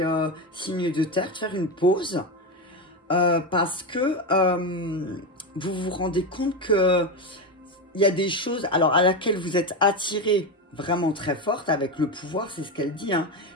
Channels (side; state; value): both; normal; correlation 0.14